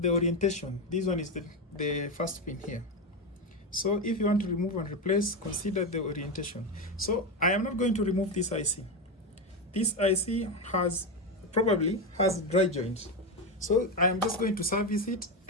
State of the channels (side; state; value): both; normal; correlation 0.12